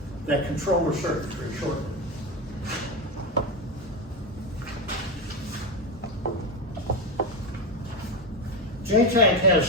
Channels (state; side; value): normal; both; correlation 0.13